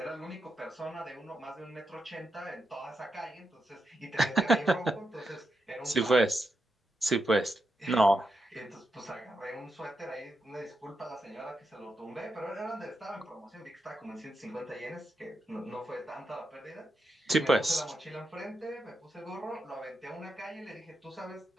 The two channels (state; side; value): normal; both; correlation 0.85